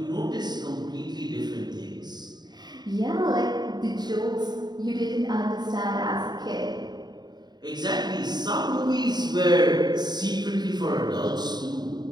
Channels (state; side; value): late; left; 0.20 ms